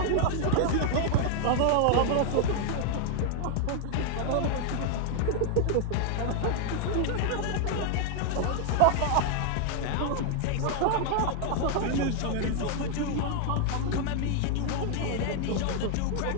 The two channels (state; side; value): different; both; correlation 0.00